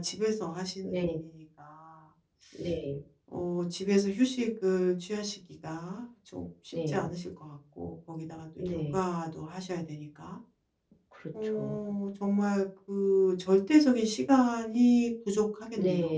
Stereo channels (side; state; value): both; identical; correlation 1.00